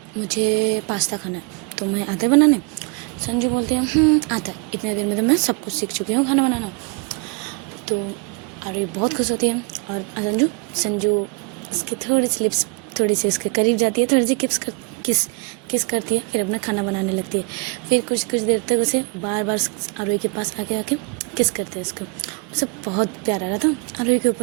मुझे पास्ता खाना है, तो मैं आता है बनाने। संजू बोलती है आता है, इतने दिन में तो मैं सब कुछ सीख चुकी हूँ खाना बनाना। तो आरोही बहुत खुश होती है और संजू उसकी थोड़ी सी लिप्स थोड़ी सी उसके करीब जाती है, थोड़ी सी किस करती है, फिर अपना खाना बनाने लगती है। फिर कुछ देर तक उसे बार बार आरोही के पास आके किस करते हैं उसको। उसे बहुत प्यार आ रहा था आरोही के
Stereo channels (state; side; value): quieter; left; 29.5 dB